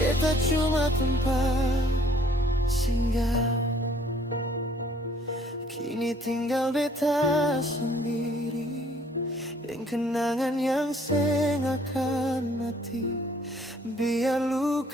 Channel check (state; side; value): normal; both; correlation 0.60